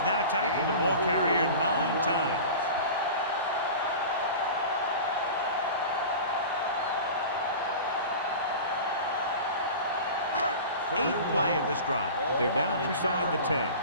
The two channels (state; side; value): inverted; both; correlation -0.35